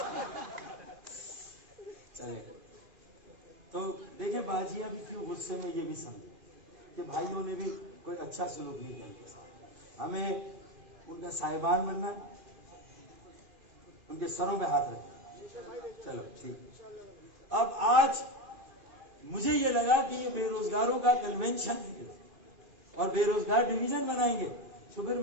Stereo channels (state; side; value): late; left; 2.5 ms